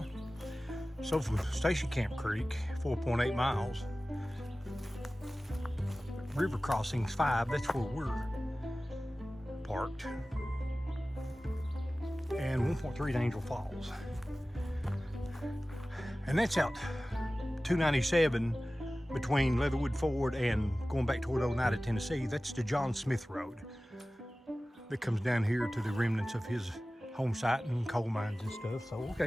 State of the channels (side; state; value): both; normal; correlation 0.97